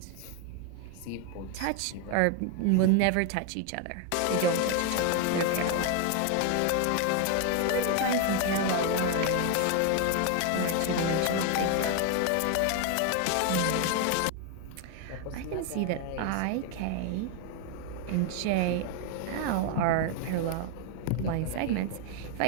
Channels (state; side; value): different; both; correlation 0.01